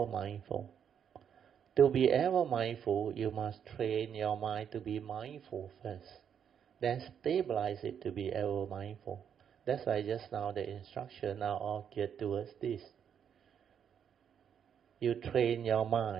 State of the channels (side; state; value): left; quieter; 8.2 dB